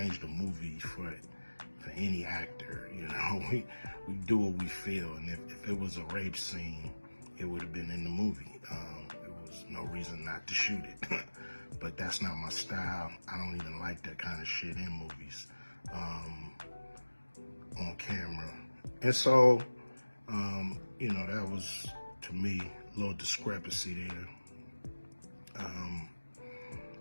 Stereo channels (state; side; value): inverted; both; correlation -1.00